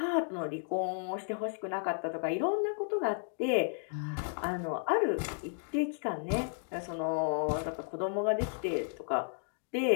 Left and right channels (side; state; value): right; silent; digital silence